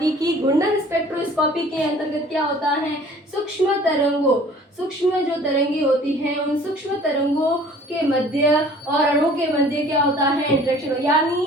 कि घूर्णन स्पेक्ट्रोस्कोपी के अंतर्गत क्या होता है, सूक्ष्म तरंगों, सूक्ष्म जो तरंगे होती हैं उन सूक्ष्म तरंगों के मध्य और अणु के मध्य क्या होता है, इंटरेक्शन।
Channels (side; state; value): both; normal; correlation 0.50